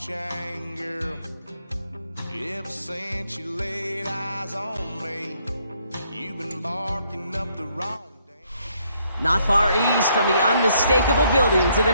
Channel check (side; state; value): both; inverted; correlation -0.70